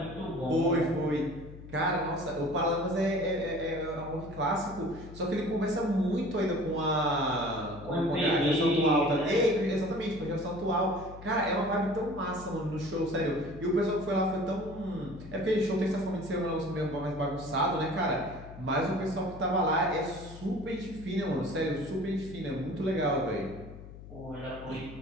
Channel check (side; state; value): left; noise; hum, 15 dB below the sound